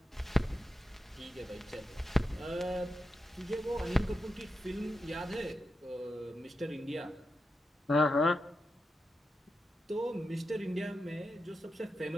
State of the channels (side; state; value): both; normal; correlation 0.88